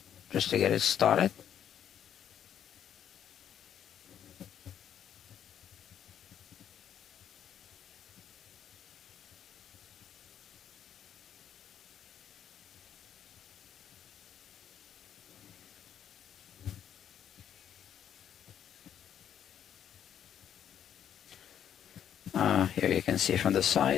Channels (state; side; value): quieter; right; 9.5 dB